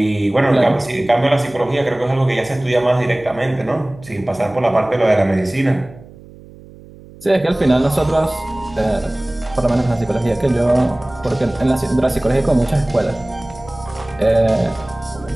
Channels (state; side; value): noise; right; hum, 21 dB below the sound